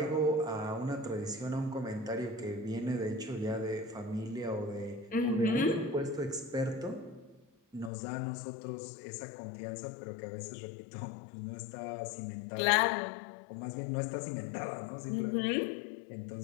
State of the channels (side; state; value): right; drops out; at 7.9 s